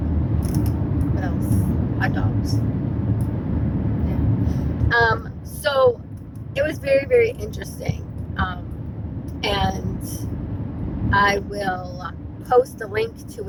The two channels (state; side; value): identical; both; correlation 1.00